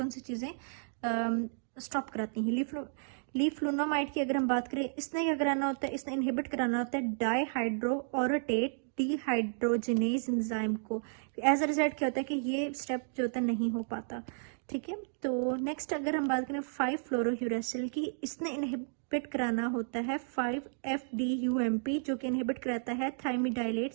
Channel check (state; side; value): silent; left; digital silence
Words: सी चीज़ें स्टॉप कराती हैं। लीफ्लोनामाइड की अगर हम बात करें, इसने क्या कराना होता है, इसने इनहिबिट कराना होता है डाईहाइड्रोऑरोटेट डिहाइड्रोजिनेज एंजाइम को। एज अ रिजल्ट क्या होता है कि ये स्टेप जो होता है नहीं हो पाता। ठीक है, तो नेक्स्ट अगर हम बात करें 5-फ्लोरोयूरेसिल की, इसने इनहिबिट कराना होता है 5-FDUMP, जो कि इनहिबिट कराता है थायमिडाइलेट